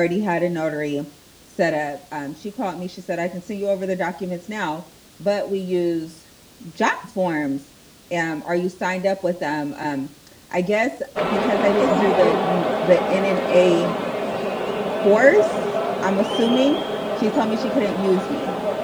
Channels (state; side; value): identical; both; correlation 1.00